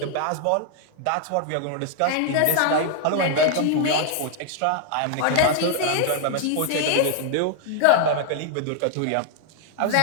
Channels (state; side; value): different; both; correlation 0.00